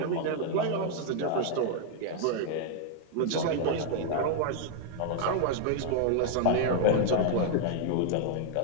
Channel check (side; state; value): both; different; correlation 0.00